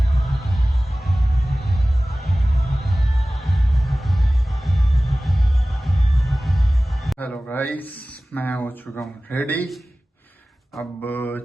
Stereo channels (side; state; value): both; normal; correlation 0.97